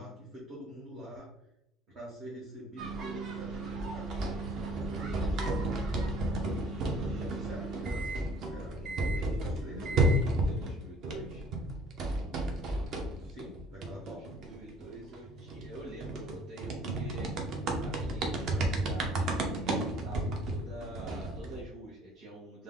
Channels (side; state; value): both; normal; correlation 0.54